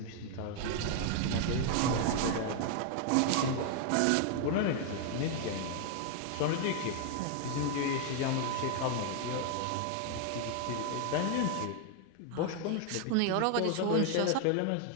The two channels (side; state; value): both; different; correlation 0.00